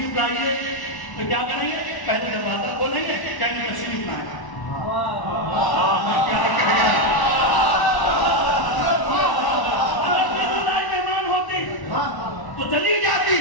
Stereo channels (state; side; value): late; right; 1.1 ms